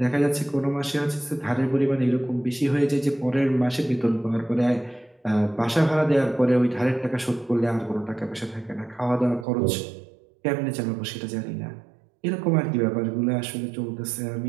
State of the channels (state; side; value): drops out; left; at 9.5 s